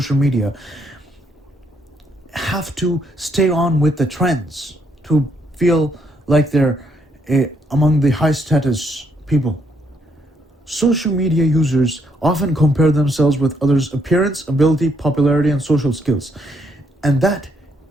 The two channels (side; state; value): both; normal; correlation 0.73